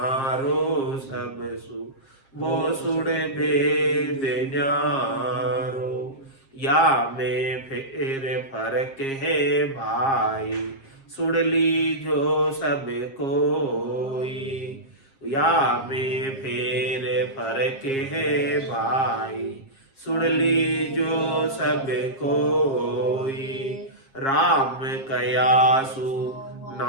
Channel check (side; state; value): right; late; 7.4 ms